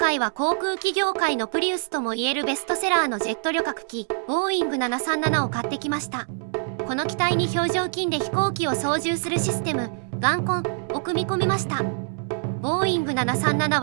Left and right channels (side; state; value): left; silent; digital silence